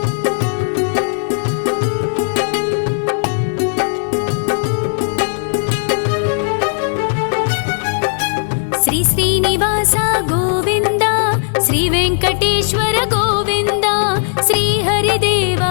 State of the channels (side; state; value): right; silent; digital silence